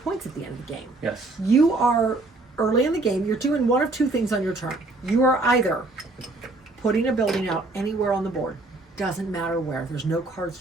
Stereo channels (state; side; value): quieter; left; 3.0 dB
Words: at the end of the game. Yes. You are, early in the game, you're doing one of two things on your turn. You are either putting a building out anywhere on the board. Doesn't matter where. There's no cards